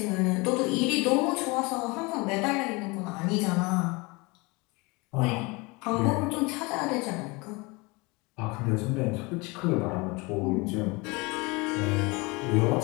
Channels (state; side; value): quieter; right; 26.1 dB